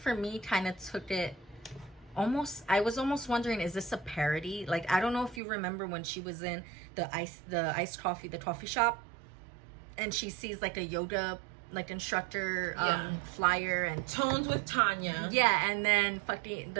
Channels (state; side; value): drops out; left; at 5.4 s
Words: me kind of took it I was almost wondering, is this a parody? Like, I don't know if you remember when she was in the coffee shop, and she sees like a yoga like instructor flyer and Tones with Tanya. Yeah, and then